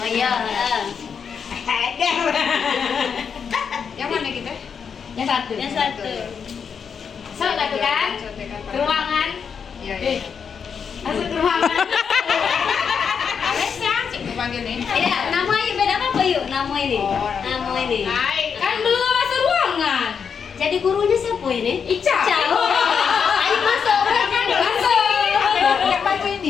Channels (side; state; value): right; quieter; 6.6 dB